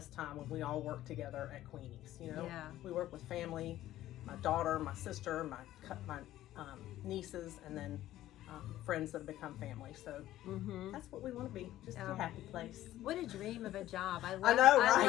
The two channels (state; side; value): quieter; right; 14.1 dB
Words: time when we all worked together at Queenies? You know, we work with family, my daughter, my sister, my nieces, and then friends that have become family. So that's what we want to be, just a happy place. What a dream of a job. I know, right? I